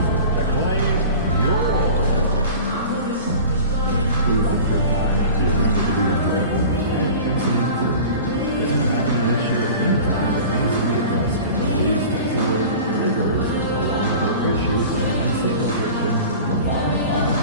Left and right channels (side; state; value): both; inverted; correlation -0.38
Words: to claim yours. We want your time